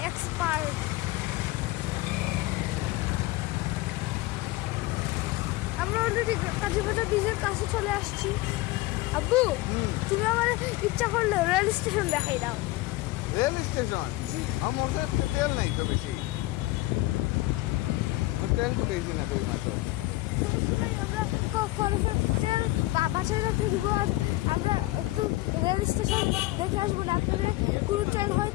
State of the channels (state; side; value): quieter; right; 19.0 dB